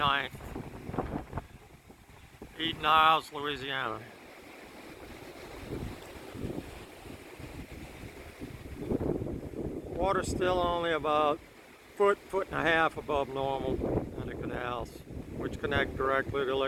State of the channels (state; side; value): identical; both; correlation 1.00